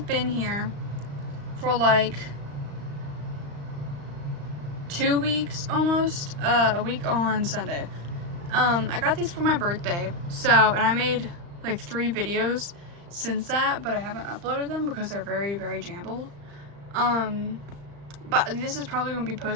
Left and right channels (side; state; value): left; late; 35 ms